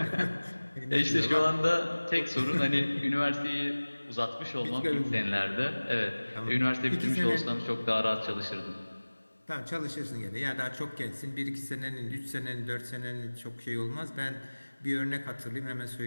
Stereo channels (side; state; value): both; inverted; correlation -1.00